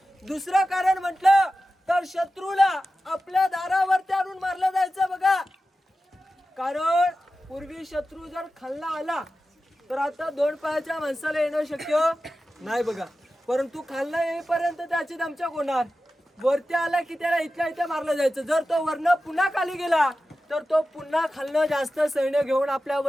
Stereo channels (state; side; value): normal; both; correlation 0.94